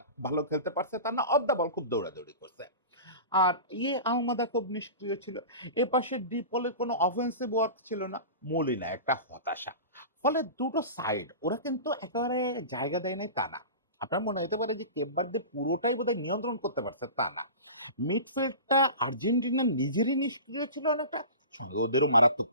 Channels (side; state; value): both; inverted; correlation -0.34